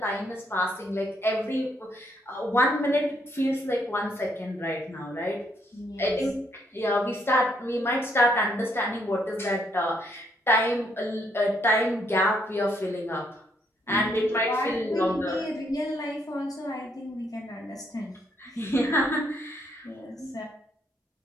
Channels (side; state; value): both; normal; correlation 0.72